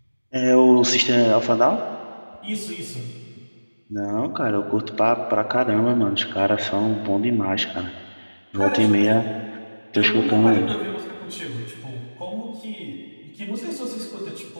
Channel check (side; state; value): both; inverted; correlation -1.00